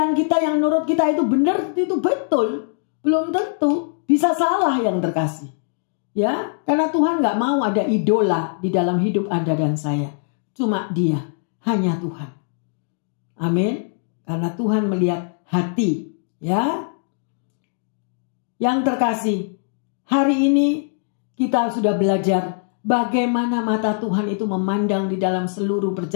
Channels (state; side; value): silent; right; digital silence